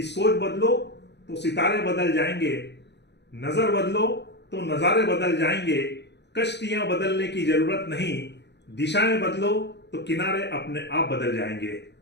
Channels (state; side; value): late; right; 0.50 ms